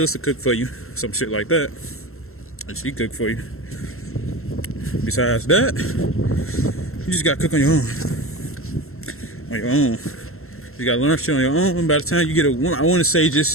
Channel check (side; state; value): right; late; 0.62 ms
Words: cook for you, some shit like that. And she cook for you. Besides that, you just gotta cook on your own. On your own. You gotta learn shit on your own. And by the time you get a woman, I want to say